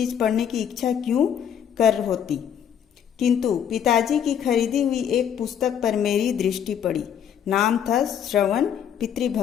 पढ़ने की इच्छा क्यों कर होती। किंतु पिताजी की खरीदी हुई एक पुस्तक पर मेरी दृष्टि पड़ी। नाम था श्रवण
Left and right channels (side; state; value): right; quieter; 8.8 dB